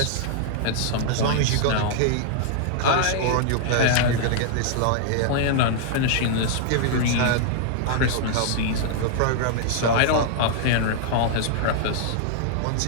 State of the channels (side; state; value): both; different; correlation -0.01